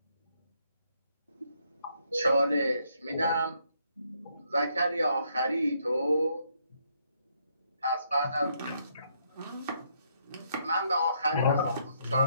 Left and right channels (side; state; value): both; inverted; correlation -0.73